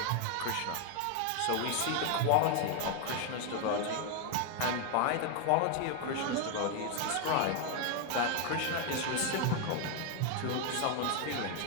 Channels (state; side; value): different; both; correlation 0.01